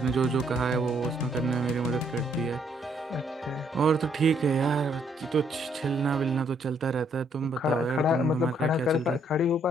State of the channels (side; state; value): both; normal; correlation 0.69